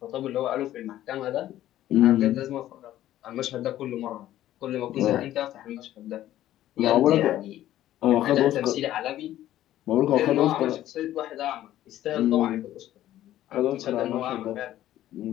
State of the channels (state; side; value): quieter; right; 13.3 dB